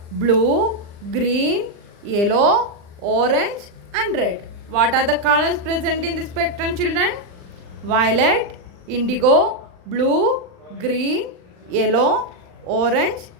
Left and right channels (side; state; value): left; late; 39 ms